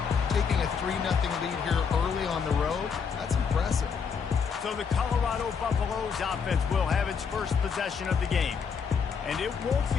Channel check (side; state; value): right; quieter; 6.2 dB